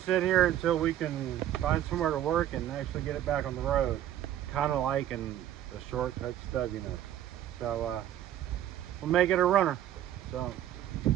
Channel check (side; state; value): left; quieter; 11.8 dB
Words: sit here until we can find somewhere to work and actually get it back on the road. Kind of liking the shortcut stubiness. So, we'll make it a runner. So,